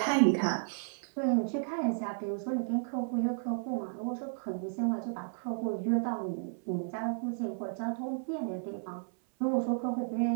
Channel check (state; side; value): silent; left; 56 dB below the other